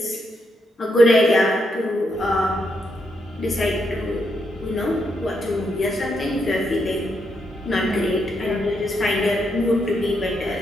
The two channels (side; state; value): both; normal; correlation 0.79